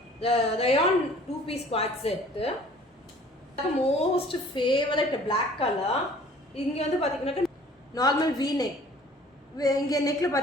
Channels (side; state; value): both; normal; correlation 0.52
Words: rayon 2-piece quad set. Most favorite black color. இங்க வந்து பாத்தீங்கன்னாக்கா normal V neck. இங்க neckல